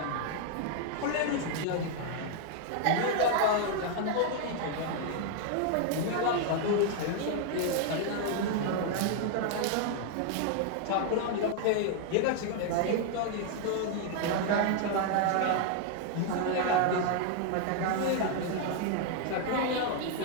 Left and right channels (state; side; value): different; both; correlation 0.00